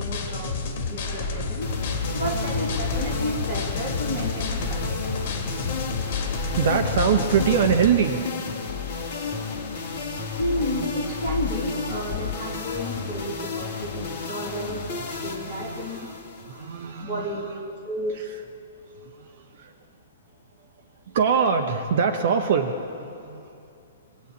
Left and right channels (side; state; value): both; inverted; correlation -0.39